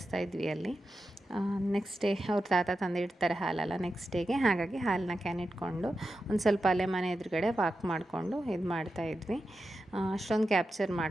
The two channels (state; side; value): normal; both; correlation 0.90